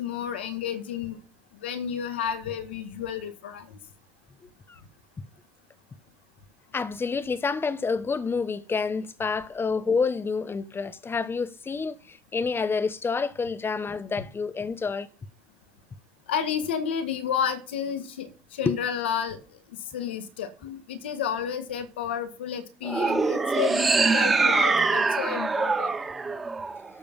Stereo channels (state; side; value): normal; both; correlation 0.61